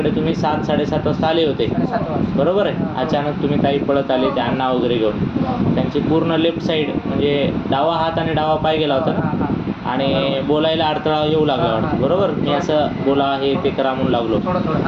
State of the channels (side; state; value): both; identical; correlation 1.00